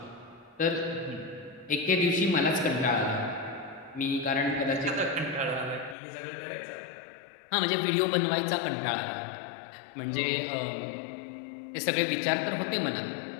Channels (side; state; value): right; drops out; at 6.0 s